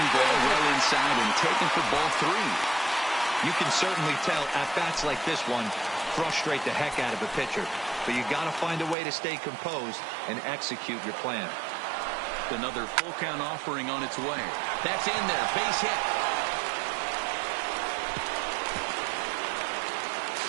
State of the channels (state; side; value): drops out; left; at 9.0 s